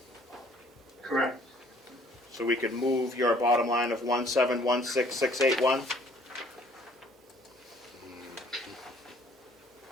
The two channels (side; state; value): both; normal; correlation 0.58